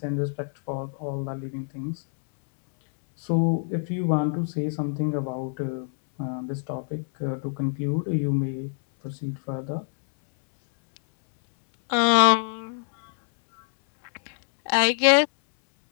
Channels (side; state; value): right; silent; 60 dB below the other